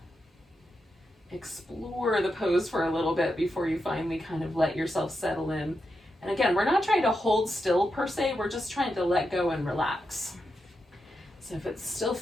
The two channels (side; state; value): both; normal; correlation 0.86